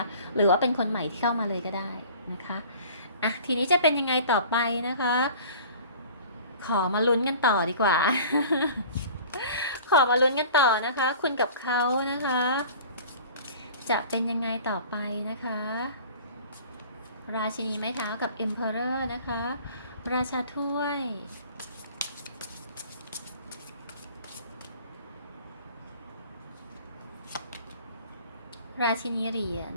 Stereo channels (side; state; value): both; inverted; correlation -0.45